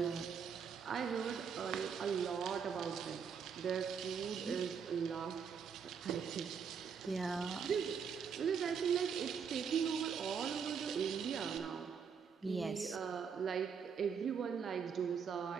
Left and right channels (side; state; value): left; quieter; 6.6 dB